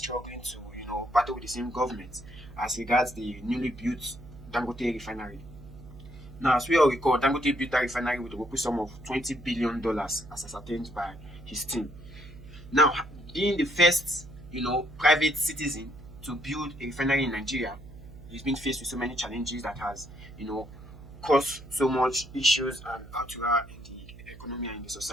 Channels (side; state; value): right; noise; hum, 17 dB below the sound